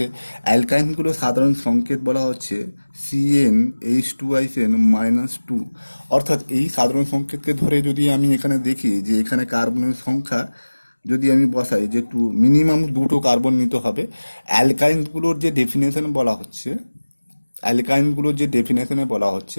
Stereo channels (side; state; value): both; inverted; correlation -1.00